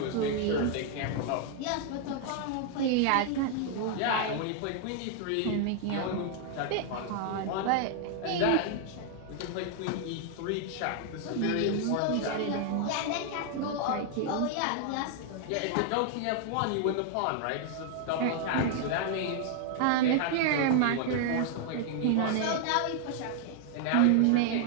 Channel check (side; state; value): both; different; correlation 0.00